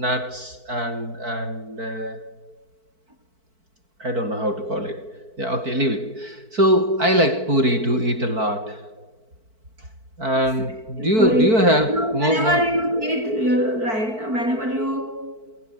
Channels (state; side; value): late; left; 4.5 ms